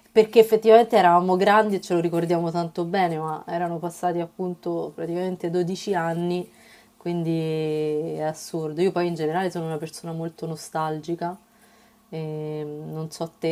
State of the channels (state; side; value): identical; both; correlation 1.00